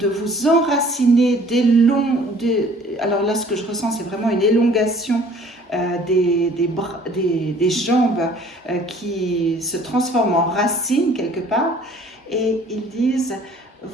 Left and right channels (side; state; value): both; normal; correlation 0.53